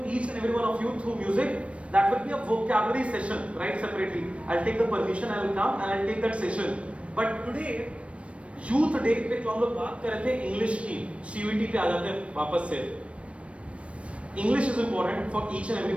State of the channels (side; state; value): left; late; 0.062 ms